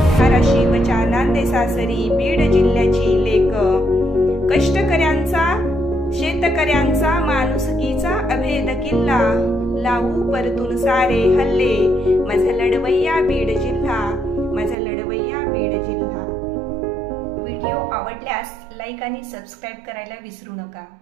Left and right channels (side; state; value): left; drops out; at 14.8 s